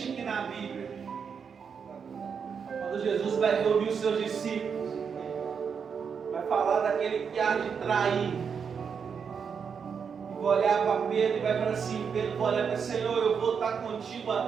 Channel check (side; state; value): left; quieter; 6.5 dB